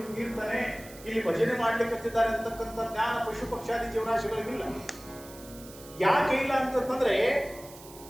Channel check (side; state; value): right; noise; hiss, 18 dB below the sound